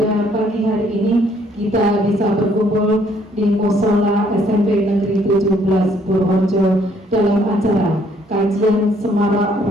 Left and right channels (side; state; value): both; normal; correlation 0.65